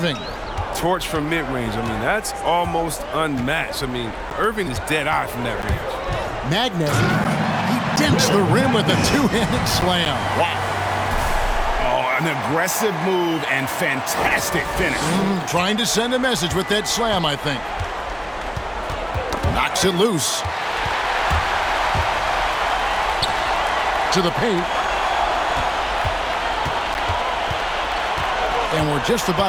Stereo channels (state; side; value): identical; both; correlation 1.00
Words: Torch from mid-range. I mean, that's almost unmatched. I mean, Irving is dead-eye from that range. Magnay, he dents the rim with a two-handed slam. Wow. Oh, an aggressive move and fantastic finish. Trying to send a message with that slam, I think. Knocks it loose. To the paint. And we're just